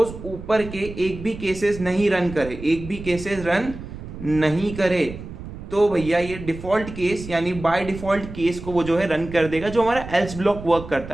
ऊपर के एक भी केसेस नहीं रन करे, एक भी केसेस रन नहीं करे, तो भैया ये डिफॉल्ट केस यानी बाय डिफॉल्ट केस को वो जो है रन कर देगा, जो हमारा एल्स ब्लॉक वर्क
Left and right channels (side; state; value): right; noise; rumble, 12 dB below the sound